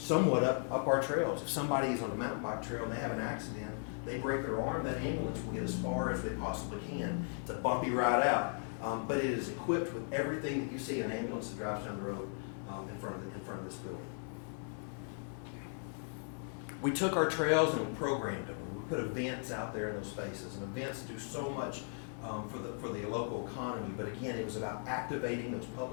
up our trails. If somebody is on a mountain bike trail and they have an accident, they break their arm, that ambulance will get as far as they possibly can. It's a bumpy ride out, but it is equipped with everything that you see an ambulance that drives down the road in front of this building. We took our trails and we programmed them. We put events out there in those spaces, and events do so much for the local economy. But again, it was about activating those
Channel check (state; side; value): silent; right; 53 dB below the other